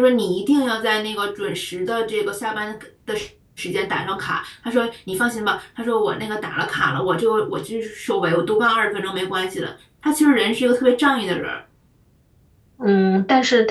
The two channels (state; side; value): identical; both; correlation 1.00